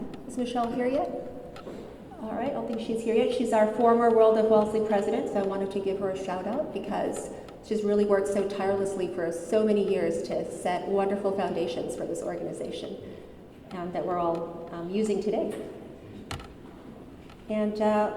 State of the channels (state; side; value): identical; both; correlation 1.00